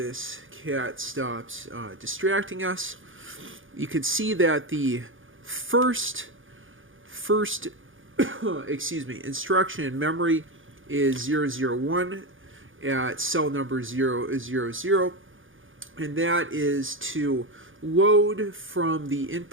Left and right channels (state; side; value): late; left; 0.58 ms